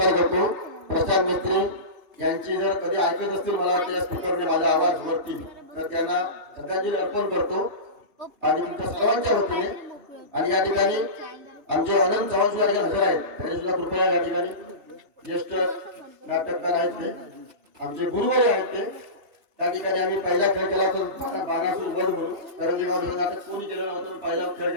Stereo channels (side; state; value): left; late; 3.4 ms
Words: करतो। प्रशांत मिस्त्री यांची जर कधी ऐकत असतील, मला वाटतं या स्पीकरने माझा आवाज वरती, तर त्यांना श्रद्धांजली अर्पण करतो आणि तुमच्या सर्वांच्या वतीने। आणि या ठिकाणी आमचे आनंद चव्हाण सुद्धा हजर आहेत, त्यांनी सुद्धा कृपया या ठिकाणी ज्येष्ठ नाटककार आहेत, ते आमचे गुरुवारी आहेत। ते त्या ठिकाणी आम्ही पहिला खेळ केला होता बाणासूर वध म्हणून, करंजे गाव नाटक कोणी केलं नव्हतं, पहिला खेळ